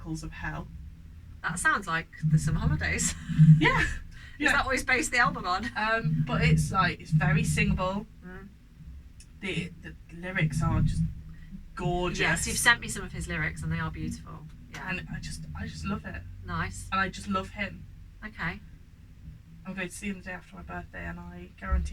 of hell. That sounds like the Summer Holidays. Yeah. Is that what he's based the album on? But it's very singable. The lyrics are just gorgeous. Yes, you've sent me some of his lyrics and they are beautiful. Yeah. And I just love it. Nice. And I just love him. Okay. I'm going to see him the day after my birthday, and I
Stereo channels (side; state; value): both; identical; correlation 1.00